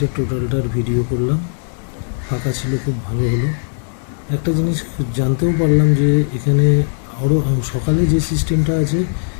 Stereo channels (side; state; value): right; silent; 58 dB below the other